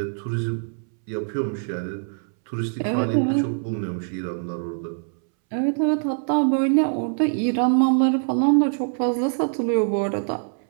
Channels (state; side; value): silent; left; 63 dB below the other